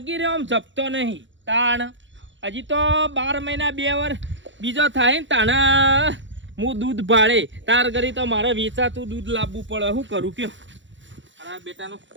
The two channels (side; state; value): left; late; 0.54 ms